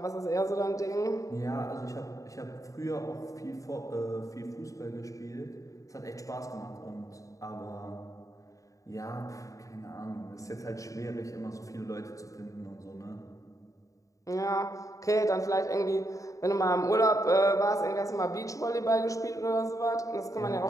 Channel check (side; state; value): right; late; 0.16 ms